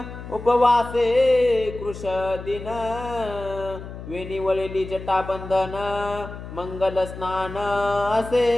उपवासे कृश दिन वेणी वळली जटाबंधन मंगल स्नान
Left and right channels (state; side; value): noise; left; hum, 12 dB below the sound